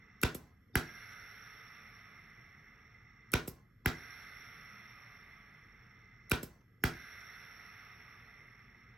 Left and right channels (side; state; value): both; normal; correlation 0.82